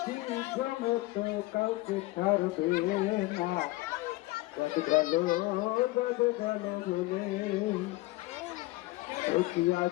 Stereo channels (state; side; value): quieter; right; 19.9 dB